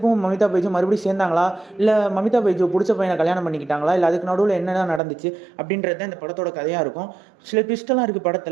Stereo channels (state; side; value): drops out; left; at 5.0 s